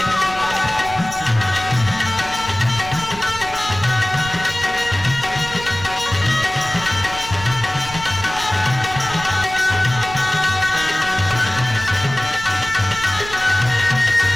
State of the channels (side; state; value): right; noise; rumble, 13 dB below the sound